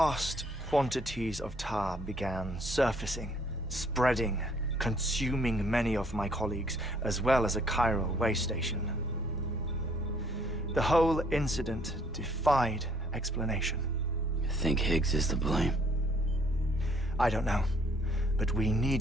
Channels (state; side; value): normal; both; correlation 0.63